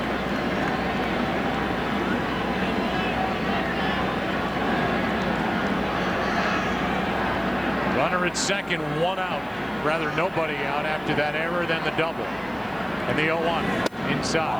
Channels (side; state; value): right; noise; hiss, 28 dB below the sound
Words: Runner at second, one out. Rather nobody out after that error, then the double. And the 0-1